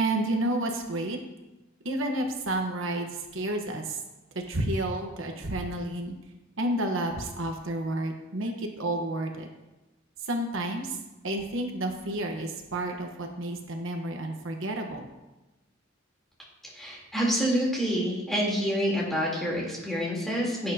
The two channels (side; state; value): both; normal; correlation 0.47